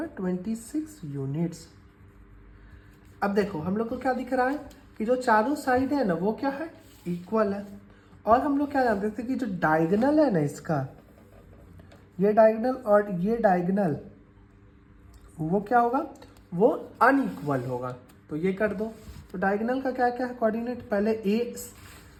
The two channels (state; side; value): identical; both; correlation 1.00